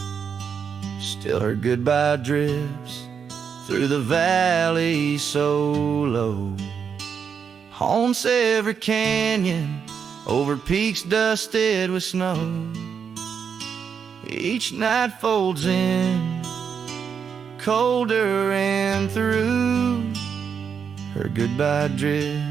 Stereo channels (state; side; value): quieter; left; 6.9 dB